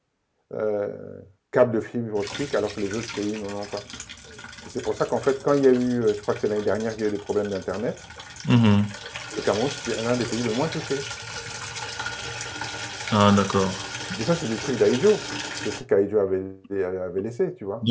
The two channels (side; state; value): both; identical; correlation 1.00